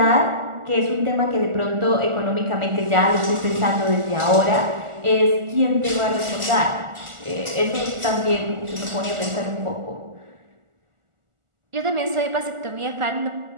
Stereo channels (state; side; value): late; left; 1.4 ms